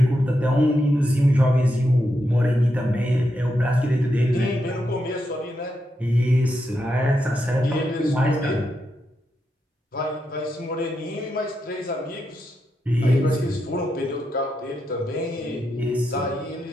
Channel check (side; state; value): both; normal; correlation 0.84